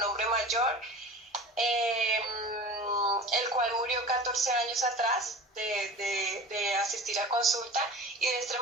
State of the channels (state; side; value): normal; both; correlation 0.37